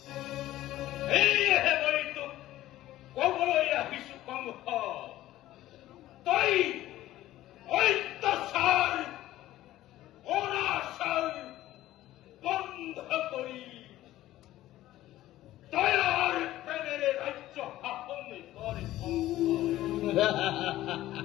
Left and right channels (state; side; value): quieter; right; 14.9 dB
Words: এই বলিত কবলইয়া শিশু কংস তই অত্যাচার অনাচার বন্ধ করি দয়ার প্রেমের রাজ্য শাসন করে